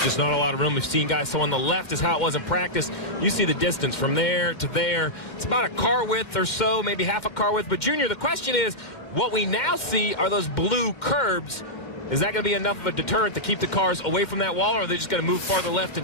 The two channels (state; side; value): late; right; 2.1 ms